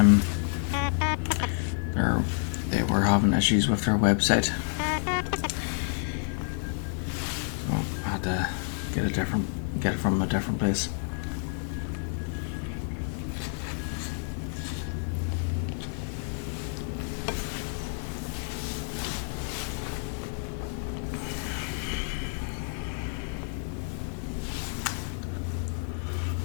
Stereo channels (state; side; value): silent; right; 58 dB below the other